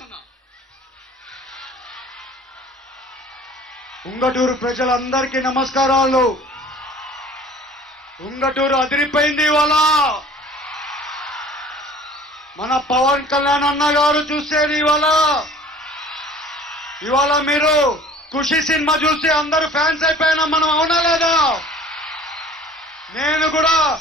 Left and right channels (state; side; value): normal; both; correlation 0.48